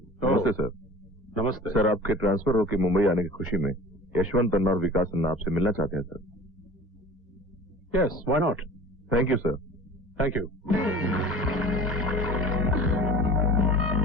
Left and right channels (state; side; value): normal; both; correlation 0.41